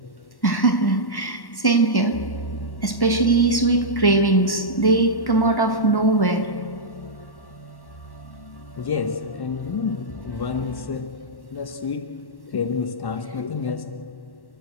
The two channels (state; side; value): late; right; 1.1 ms